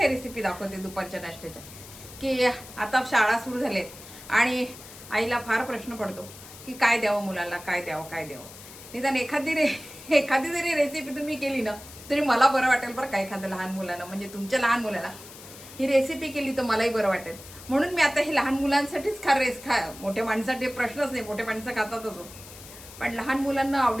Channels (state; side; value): noise; left; hiss, 17 dB below the sound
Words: रेसिपी दाखवते दुपारच्या नाश्त्याच्या, की आता शाळा सुरू झालेत आणि आईला फार प्रश्न पडतो की काय द्यावं मुलाला, काय द्यावं. निदान एखादी जरी रेसिपी तुम्ही केली ना तरी मला बरं वाटेल बरं का. एखाद्या लहान मुलांना, म्हणजे तुमच्या लहान मुलाला ही रेसिपी केली तर मलाही बरं वाटेल. म्हणून मी आता हे लहान मुलांसाठीच मोठ्या माणसासाठी प्रश्नच नाही, मोठे माणसं खातातच हो, पण लहान मुलांना